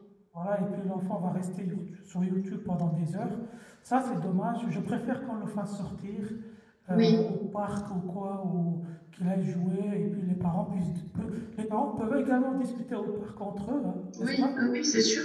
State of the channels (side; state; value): both; identical; correlation 1.00